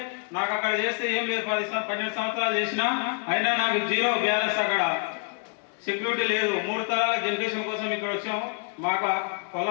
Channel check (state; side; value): quieter; right; 38.3 dB